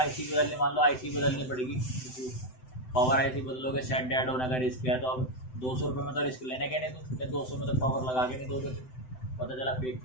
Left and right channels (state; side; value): late; right; 7.8 ms